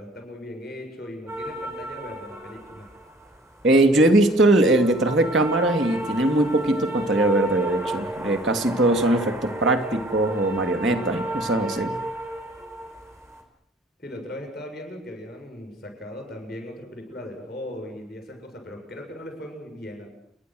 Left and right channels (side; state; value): both; normal; correlation 0.53